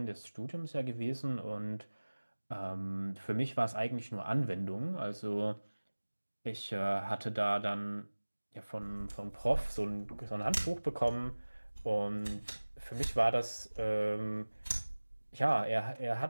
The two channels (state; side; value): inverted; both; correlation -1.00